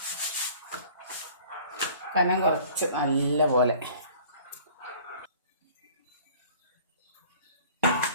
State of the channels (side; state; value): both; inverted; correlation -0.49